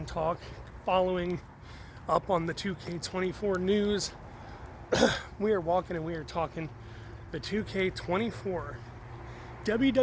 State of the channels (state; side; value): identical; both; correlation 1.00